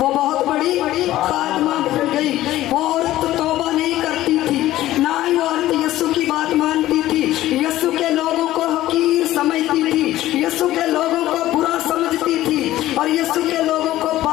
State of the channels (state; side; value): quieter; right; 14.9 dB